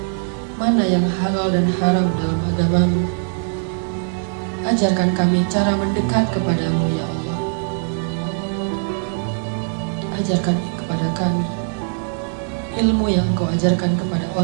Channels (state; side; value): silent; left; 63 dB below the other